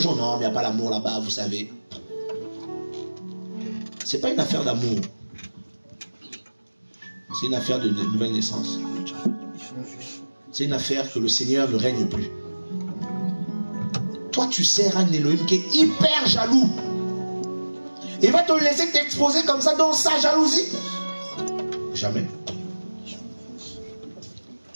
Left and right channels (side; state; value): both; inverted; correlation -1.00